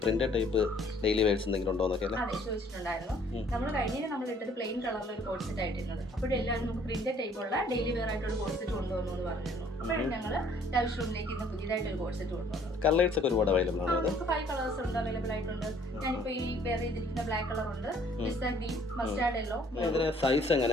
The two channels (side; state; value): both; normal; correlation 0.59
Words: പ്രിന്റഡ് ടൈപ്പ് ഡെയിലി വെയർസ് എന്തെങ്കിലും ഉണ്ടോ എന്നൊക്കെ അല്ലേ? അതെ, ചോദിച്ചിട്ടുണ്ടായിരുന്നു. നമ്മൾ കഴിഞ്ഞ നമ്മൾ ഇട്ടത് പ്ലെയിൻ കളറിലുള്ള ഒരു കോഡ് സെറ്റ് ആയിട്ടിരുന്നത്. അപ്പോഴെല്ലാവരും നമുക്ക് പ്രിന്റഡ് ടൈപ്പുള്ള ഡെയിലി വെയർ ആയിട്ടുള്ള കോഡ് സെറ്റ് കൊണ്ടുവന്നു എന്ന് പറഞ്ഞിരുന്നു. അപ്പോഴും ഞങ്ങൾ ലവ് ഷൂമിലേക്ക് ഇന്ന് പുതിയതായിട്ട് ഒരു കോഡ് സെറ്റ് കൊണ്ടുവന്നത്. കളേഴ്സ് ഒക്കെ ഒരുപാട് അവൈലബിൾ ആണ്. നമുക്ക് 5 കളേഴ്സ് ഉണ്ട്, അവൈലബിൾ ആയിട്ടുണ്ട്. ഞാനിപ്പോൾ ഈ വെയർ ചെയ്തിരിക്കുന്ന ബ്ലാക്ക് കളർ ഉണ്ട്, പിസ്ത ഗ്രീൻ, മസ്റ്റാർഡ് യെല്ലോ. ഇതിന് സൈസ്